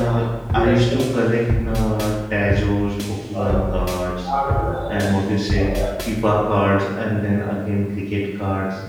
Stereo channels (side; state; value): both; identical; correlation 1.00